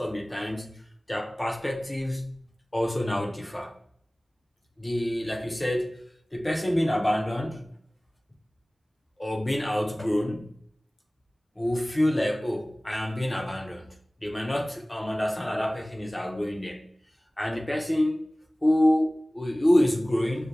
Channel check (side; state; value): both; normal; correlation 0.98